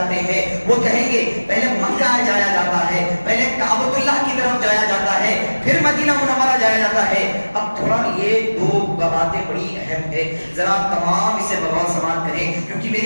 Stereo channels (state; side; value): inverted; both; correlation -1.00